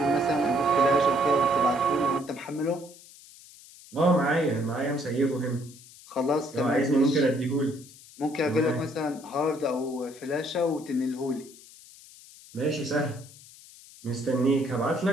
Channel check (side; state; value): left; noise; hiss, 21 dB below the sound